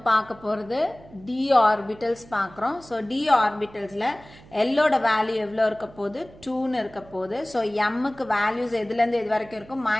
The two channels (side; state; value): right; noise; hum, 22 dB below the sound